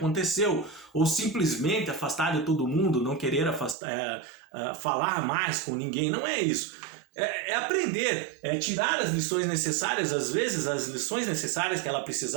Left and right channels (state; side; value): drops out; left; at 3.8 s